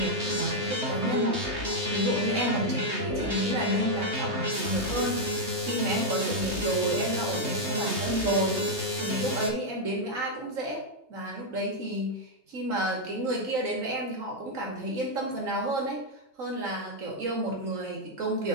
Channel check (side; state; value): left; late; 3.2 ms